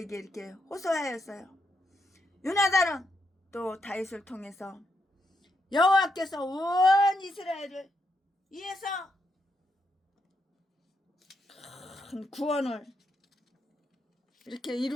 이렇게 호소하였어요. 요나단은 또 다윗을 통해서 여호와께서 온 이스라엘을 위해서 큰 구원을 이렇게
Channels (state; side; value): normal; both; correlation 0.80